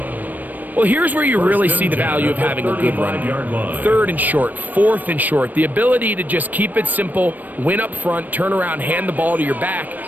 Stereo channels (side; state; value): left; late; 0.086 ms